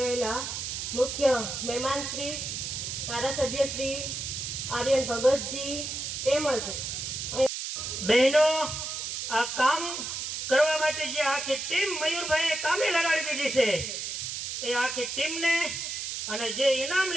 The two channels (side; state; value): right; noise; hiss, 4 dB below the sound